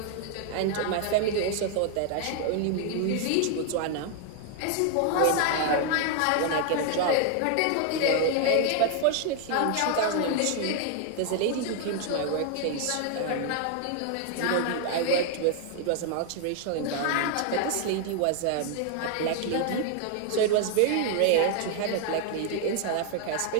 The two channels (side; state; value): both; different; correlation 0.00